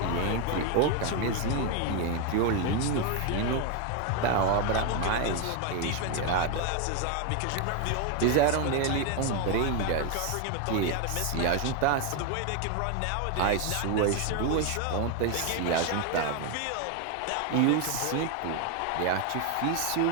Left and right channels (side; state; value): both; different; correlation 0.01